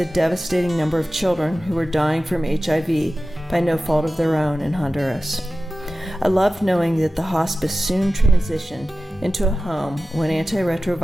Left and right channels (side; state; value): both; normal; correlation 0.95